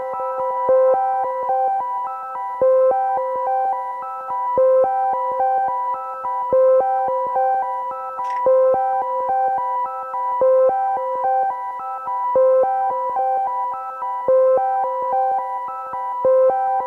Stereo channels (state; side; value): identical; both; correlation 1.00